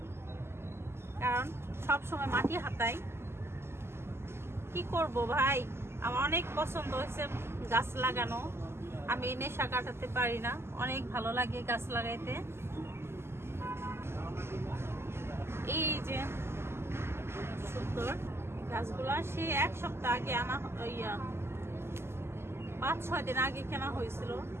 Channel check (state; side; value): late; left; 0.12 ms